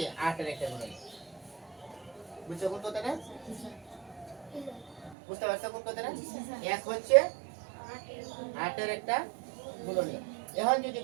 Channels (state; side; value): drops out; left; at 5.2 s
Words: 8 এর একটা গুণনীয়ক। বুঝছো কোন কথাটা? বুঝতে পারছো কোন কথাটা? 1 হচ্ছে 8 এর একটা গুণনীয়ক। এখন যদি